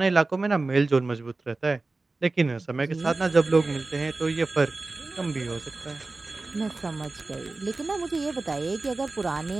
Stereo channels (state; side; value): quieter; left; 3.4 dB